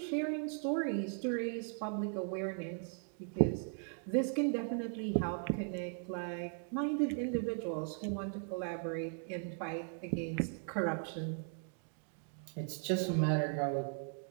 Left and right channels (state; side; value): silent; left; 52 dB below the other